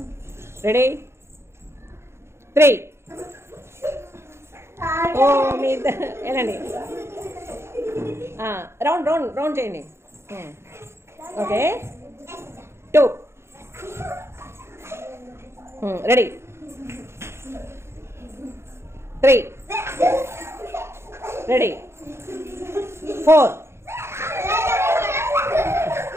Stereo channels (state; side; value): late; left; 0.13 ms